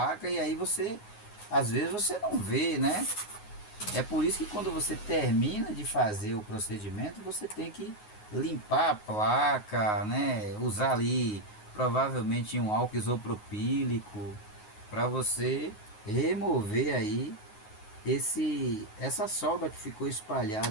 e aí às vezes você não vê, né? É por isso que quando você termina de fazer o procedimento, você tem que limpar a placa, né? Usar ali provavelmente um álcool isopropílico para você remover aí essa solda que ficou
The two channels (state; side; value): late; right; 9.5 ms